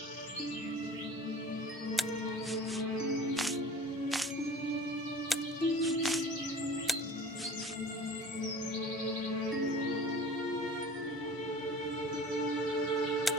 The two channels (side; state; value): both; normal; correlation 0.42